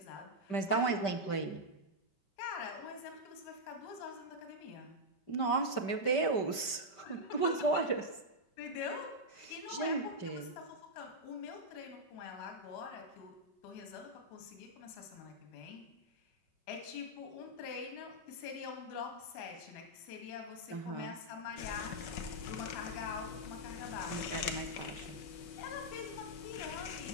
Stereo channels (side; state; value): right; late; 5.2 ms